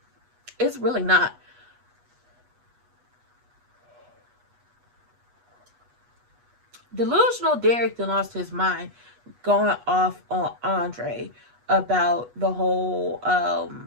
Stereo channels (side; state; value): left; late; 8.2 ms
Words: It's really not. Delusional Derek then lost his mind going off on Andre about the whole